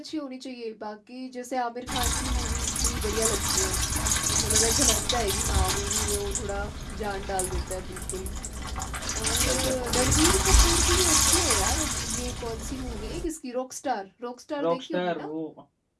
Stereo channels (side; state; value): both; identical; correlation 1.00